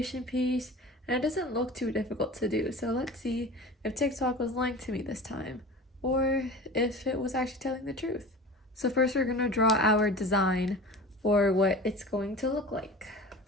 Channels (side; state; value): both; normal; correlation 0.36